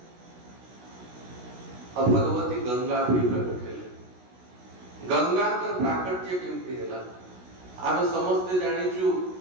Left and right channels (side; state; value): left; late; 16 ms